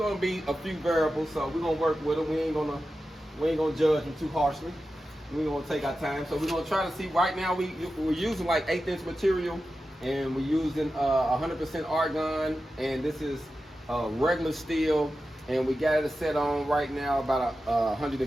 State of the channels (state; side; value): normal; both; correlation 0.92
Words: be a few variables. So we're gonna work with him. We ain't gonna judge him too harshly. We're gonna take our time. So we're gonna try to see. Right now we're using like 1/8 inch material, and we're using 100% argon, and this is regular steel, and we got it set on right now about